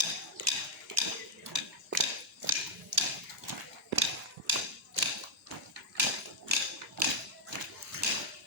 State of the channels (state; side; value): normal; both; correlation -0.04